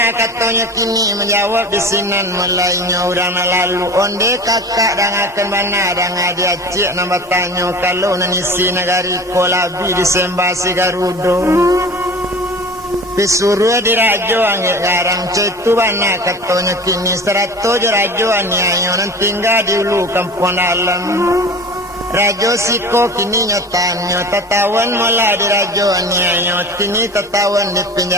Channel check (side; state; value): both; normal; correlation 0.37